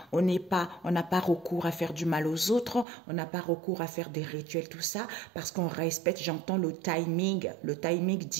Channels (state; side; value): drops out; left; at 2.9 s